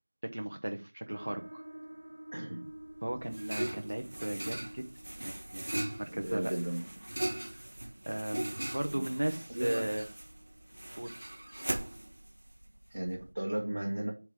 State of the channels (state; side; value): inverted; both; correlation -1.00